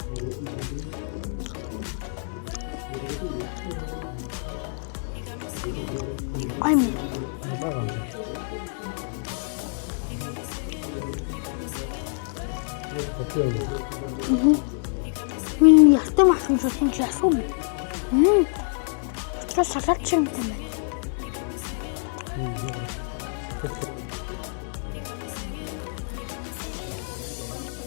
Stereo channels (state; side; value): silent; right; digital silence